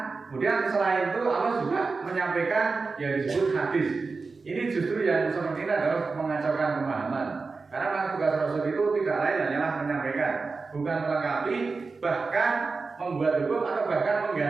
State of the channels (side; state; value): left; quieter; 4.2 dB